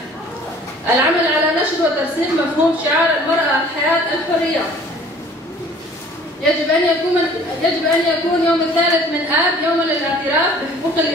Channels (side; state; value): both; normal; correlation 0.51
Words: العمل على نشر وترسيخ مفهوم شعار المرأة الحياة الحرية. يجب أن يكون يوم 3/آب يوما للاعتراف بحقوق